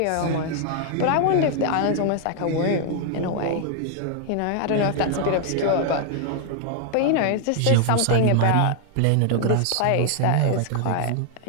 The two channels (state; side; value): different; both; correlation 0.00